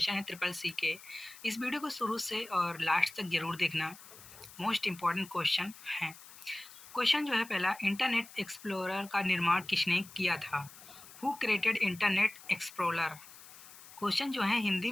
है ट्रिपल सी के। इस वीडियो को शुरू से और लास्ट तक जरूर देखना, मोस्ट इम्पॉर्टेंट क्वेश्चन है। क्वेश्चन जो है पहला, इंटरनेट एक्सप्लोरर का निर्माण किसने किया था? Who created internet explorer? Question जो है हिंदी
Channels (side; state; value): left; noise; hiss, 18 dB below the sound